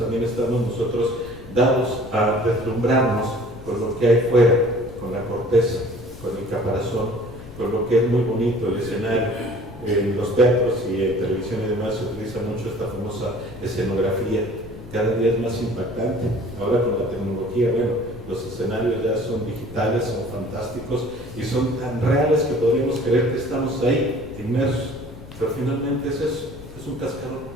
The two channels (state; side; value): noise; left; rumble, 17 dB below the sound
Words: estamos nosotros dados a deslumbrarnos con lo que hay fuera, con la corteza, con el caparazón, con lo que es muy bonito, el escenario. En los teatros y en televisión y demás se utiliza mucho esta famosa escenografía, cada día es más impactante. Ahora con la tecnología, bueno, los escenarios ya son digitales, son fantásticos y son tan reales que podríamos creer que estamos ahí, inmersos. Pero finalmente es eso, es un cascarón,